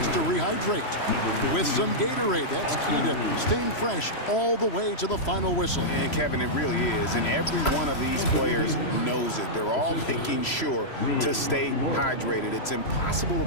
to rehydrate with some Gatorade. That's key to staying fresh all the way to the final whistle. And Kevin, it really is. And every one of these players knows it. They're all making sure to stay hydrated. It's impossible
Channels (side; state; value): right; late; 3.0 ms